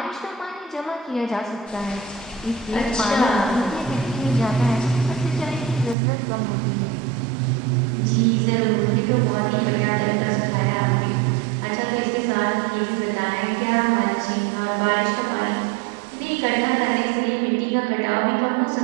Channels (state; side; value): drops out; left; at 6.0 s